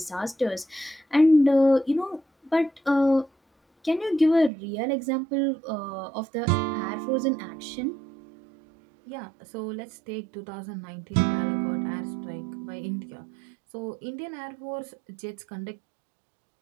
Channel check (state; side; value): drops out; left; at 4.5 s